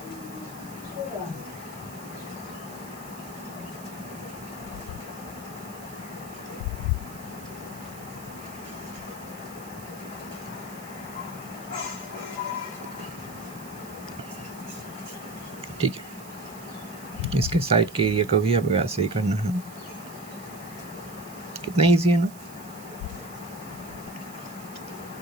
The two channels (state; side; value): noise; right; hiss, 17 dB below the sound